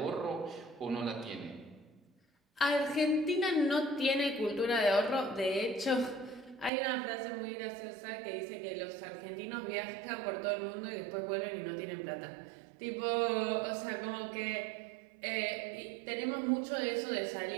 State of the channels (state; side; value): drops out; left; at 6.7 s